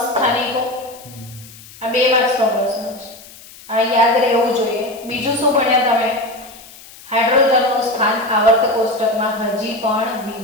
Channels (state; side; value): noise; left; hiss, 20 dB below the sound